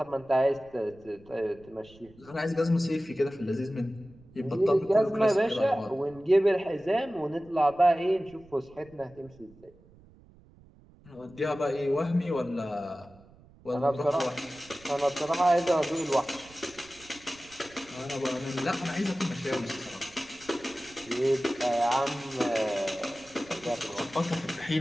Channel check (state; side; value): noise; right; rumble, 25 dB below the sound